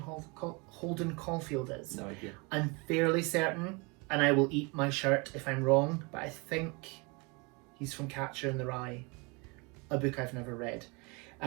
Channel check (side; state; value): left; quieter; 29.2 dB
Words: Holden Caulfield is? No idea. I'm fairly certain, and I will eat my shirt if I'm wrong, but I think he's from Catcher in the Rye, a book I've never read.